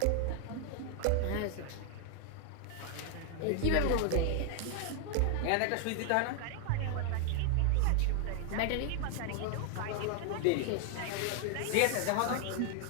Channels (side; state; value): both; different; correlation 0.00